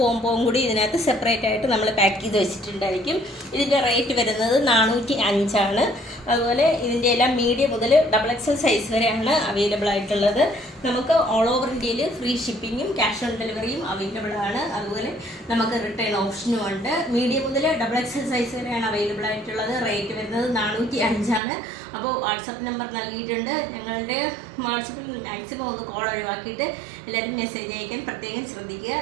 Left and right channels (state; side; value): drops out; left; at 21.4 s